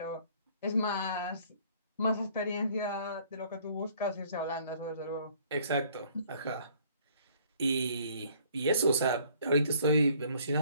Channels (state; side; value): inverted; both; correlation -0.59